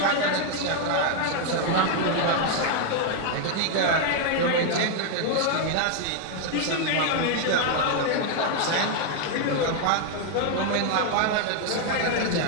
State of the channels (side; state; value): both; different; correlation 0.00